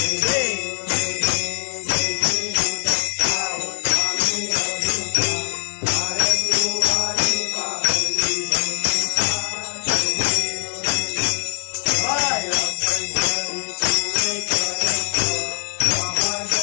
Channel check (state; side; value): silent; right; digital silence